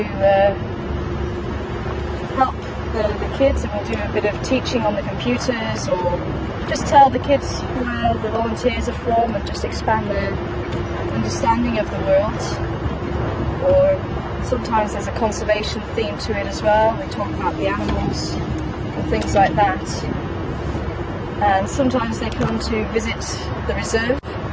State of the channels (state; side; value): identical; both; correlation 1.00